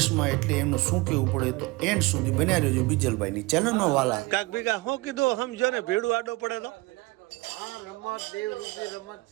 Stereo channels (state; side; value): quieter; left; 22.9 dB